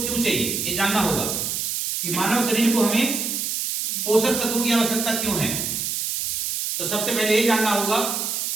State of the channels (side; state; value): right; noise; hiss, 2 dB below the sound